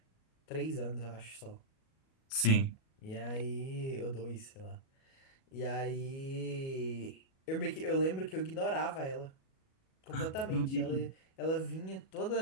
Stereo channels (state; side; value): late; right; 37 ms